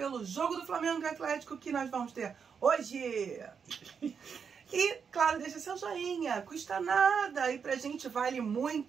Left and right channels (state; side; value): quieter; left; 6.5 dB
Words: jogo do Flamengo e Atlético que nós vamos ter hoje. E, claro, deixa seu joinha, custa nada e pra gente vale